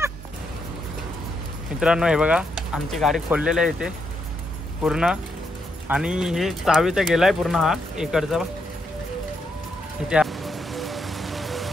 मित्रांनो हे बघा आमची गाडी खोललेली आहे इथे पूर्ण. आणि हे चावी तर गेलाय पूर्ण. हा इकडचा इथे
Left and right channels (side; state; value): both; normal; correlation 0.79